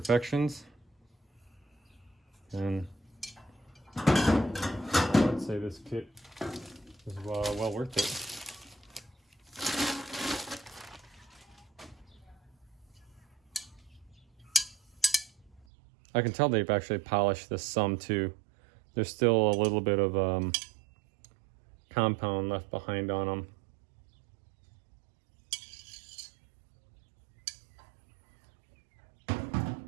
then I'd say this kit is well worth it. I can tell they've actually polished this some too. There's still a little bit of compound left behind on them.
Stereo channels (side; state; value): left; drops out; at 15.7 s